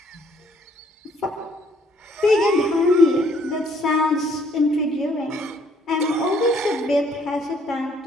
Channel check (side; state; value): both; normal; correlation 0.64